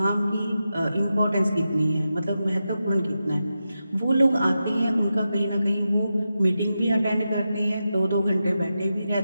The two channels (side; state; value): both; inverted; correlation -0.90